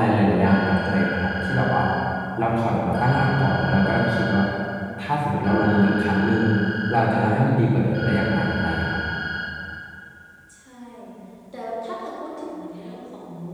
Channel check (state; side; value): identical; both; correlation 1.00